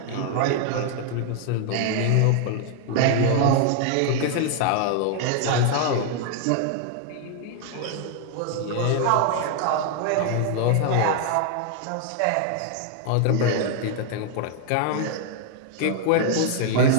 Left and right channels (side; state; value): both; different; correlation 0.00